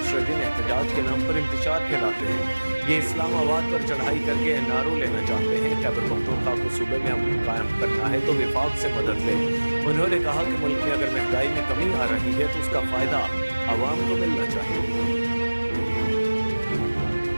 دن احتجاج کے نام پر انتشار پھیلاتے ہیں۔ یہ اسلام آباد پر چڑھائی کر کے این آر او لینا چاہتے ہیں۔ خیبر پختونخوا کو صوبے میں امن قائم کرنا ہے تو وفاق سے مدد لیں۔ انہوں نے کہا کہ ملک میں اگر مہنگائی میں کمی آ رہی ہے تو اس کا فائدہ عوام کو ملنا چاہیے۔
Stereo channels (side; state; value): both; inverted; correlation -1.00